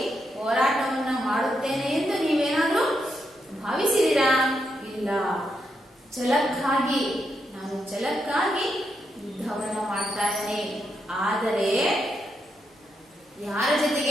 ಹೋರಾಟವನ್ನ ಮಾಡುತ್ತೇನೆ ಎಂದು ನೀವೇನಾದ್ರೂ ಭಾವಿಸಿದಿರಾ? ಇಲ್ಲ. ಛಲಕ್ಕಾಗಿ, ನಾನು ಛಲಕ್ಕಾಗಿ ಯುದ್ಧವನ್ನ ಮಾಡ್ತಾ ಇದ್ದೇನೆ. ಆದರೆ ಯಾರ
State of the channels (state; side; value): normal; both; correlation 0.82